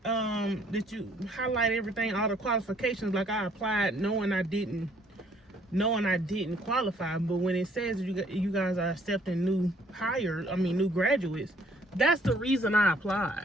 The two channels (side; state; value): both; normal; correlation 0.62